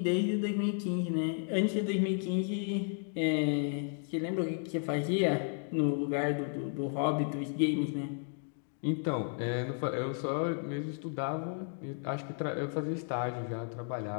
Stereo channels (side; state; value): right; silent; 56 dB below the other